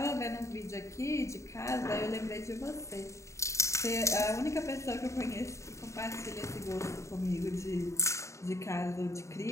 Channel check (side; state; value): right; late; 0.14 ms